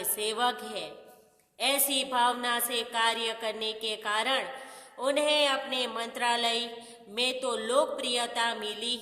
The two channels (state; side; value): identical; both; correlation 1.00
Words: सेवक हैं। ऐसी भावना से कार्य करने के कारण उन्हें अपने मंत्रालय में तो लोकप्रियता मिली